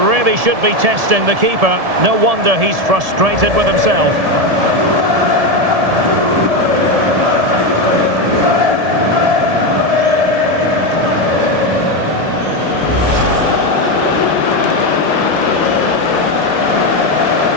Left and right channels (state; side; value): late; left; 1.7 ms